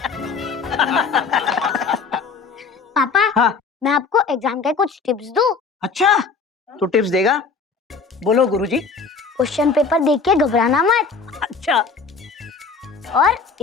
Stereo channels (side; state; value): right; quieter; 4.9 dB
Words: पापा, हाँ? मैं आपको एग्जाम के कुछ टिप्स दूं? अच्छा, तू टिप्स देगा? बोलो गुरुजी। क्वेश्चन पेपर देख के घबराना मत। अच्छा और